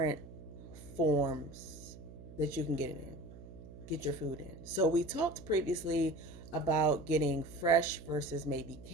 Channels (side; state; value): right; noise; hum, 16 dB below the sound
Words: forms that you can get your food in. So we talked previously about getting fresh versus maybe